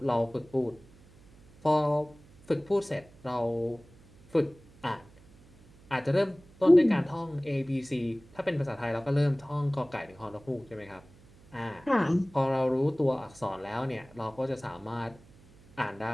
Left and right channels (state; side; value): noise; right; hum, 25 dB below the sound